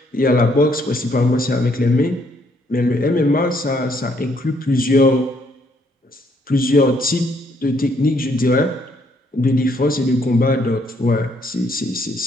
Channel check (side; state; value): both; normal; correlation 0.69